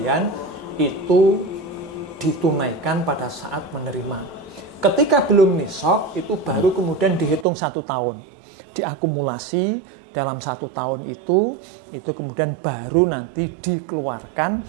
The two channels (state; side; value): drops out; left; at 7.5 s